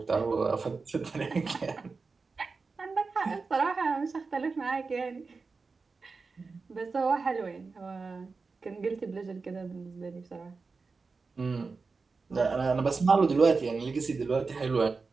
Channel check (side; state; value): left; quieter; 4.4 dB